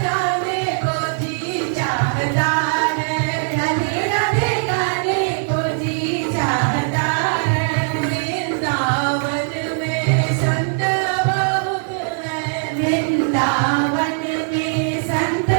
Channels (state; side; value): silent; left; digital silence